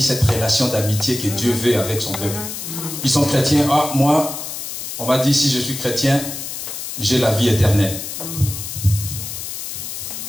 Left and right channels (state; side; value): noise; left; hiss, 7 dB below the sound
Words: cette relation d'amitié que Dieu veut avec son peuple. Ils sont chrétiens. Ah, moi, on m'a dit, si je suis chrétien, j'ai la vie éternelle.